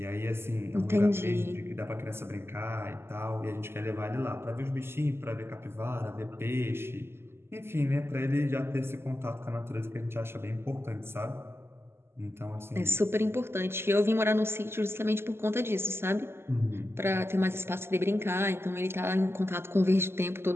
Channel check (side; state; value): left; late; 0.12 ms